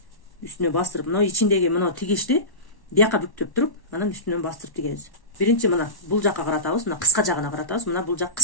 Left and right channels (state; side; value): late; right; 1.1 ms